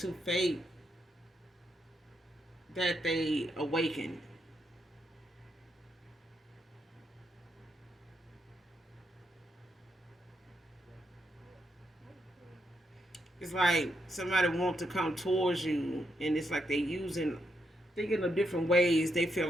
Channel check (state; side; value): normal; both; correlation 0.80